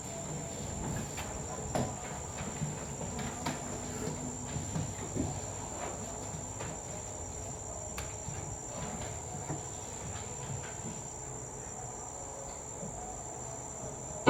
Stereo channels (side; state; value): both; identical; correlation 1.00